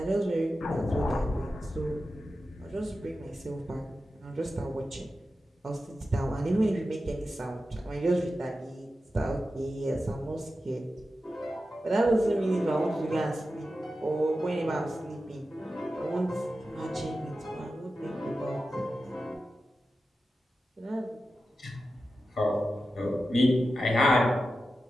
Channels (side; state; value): both; normal; correlation 0.92